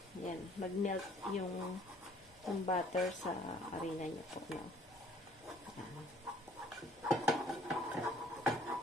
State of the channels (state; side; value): normal; both; correlation 0.58